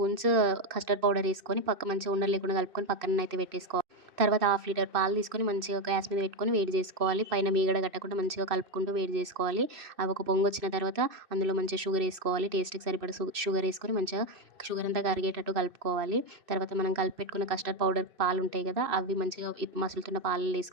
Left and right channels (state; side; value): late; left; 2.6 ms